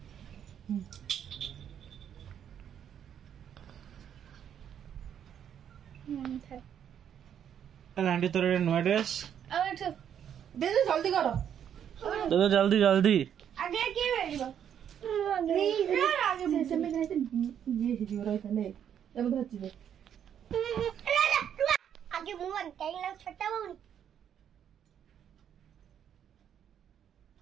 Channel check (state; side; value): quieter; left; 9.1 dB